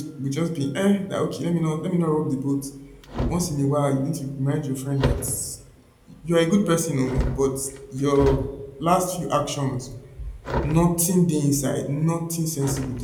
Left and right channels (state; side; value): identical; both; correlation 1.00